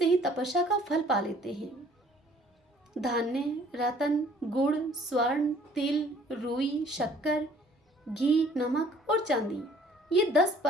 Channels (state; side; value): normal; both; correlation 0.57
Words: ही तपस्या का फल पा लेते हैं। धान्य, रत्न, गुड़, स्वर्ण, तिल, रुई, शक्कर, घी, नमक और चांदी ये 10